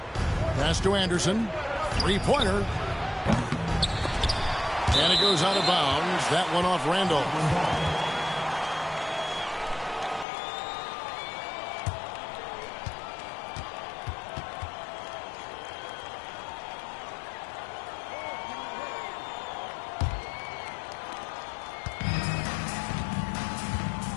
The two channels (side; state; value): right; drops out; at 10.2 s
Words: Pass to Anderson. Three-pointer. And it goes out of bounds. That one off Randolph.